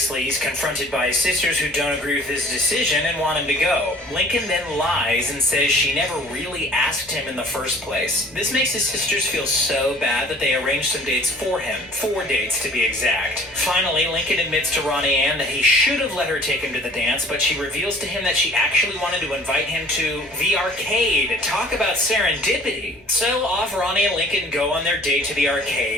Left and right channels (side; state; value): both; normal; correlation 0.50